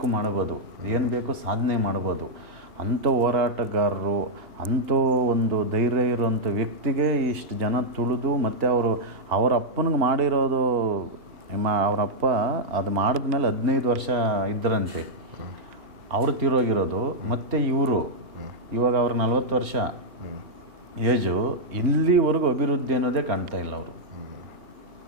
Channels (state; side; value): late; left; 2.8 ms